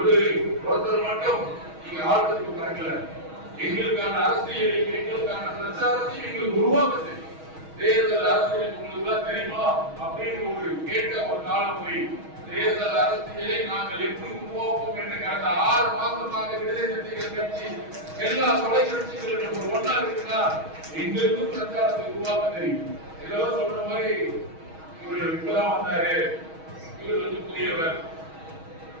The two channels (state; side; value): late; left; 6.3 ms